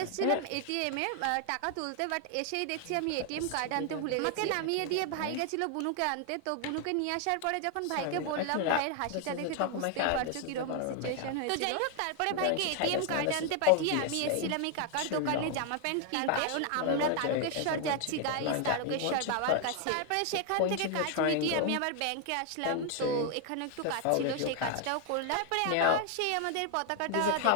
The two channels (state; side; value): different; both; correlation 0.00